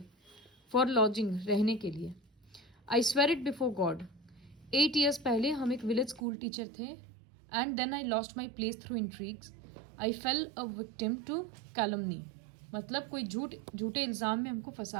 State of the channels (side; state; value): left; drops out; at 6.2 s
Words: फॉर लॉजिंग, रहने के लिए. I swear it before God. 8 years पहले हम एक विलेज स्कूल टीचर थे. And then I lost my place through intrigues. I fell a victim to calumny. मतलब कोई झूठे इल्ज़ाम में हमको